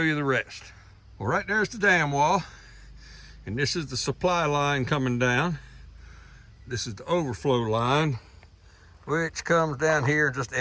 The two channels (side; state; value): both; identical; correlation 1.00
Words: you the rest. Well, right there's the dam wall, and this is the supply line coming down. This is the overflow line, which comes down here and just